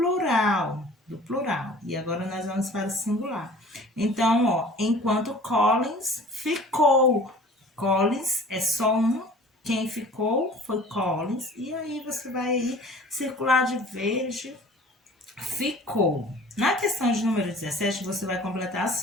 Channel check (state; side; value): normal; both; correlation 0.46